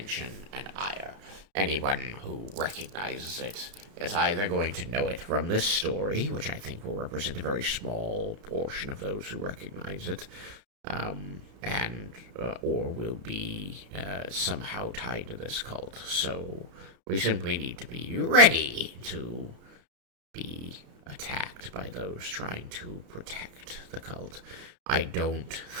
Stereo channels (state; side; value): late; left; 32 ms